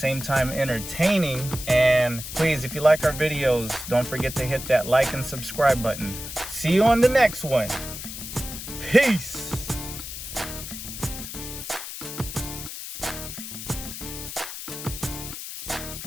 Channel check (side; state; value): left; noise; hiss, 9 dB below the sound